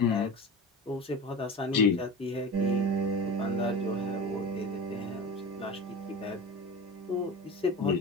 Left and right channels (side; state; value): both; normal; correlation 0.30